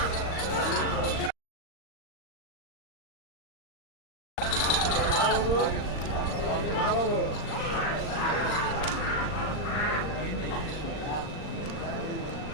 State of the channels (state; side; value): late; right; 39 ms